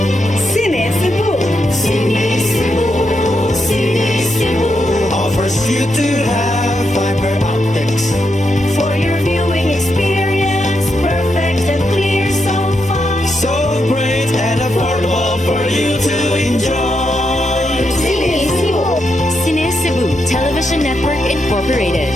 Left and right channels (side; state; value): left; noise; hum, 19 dB below the sound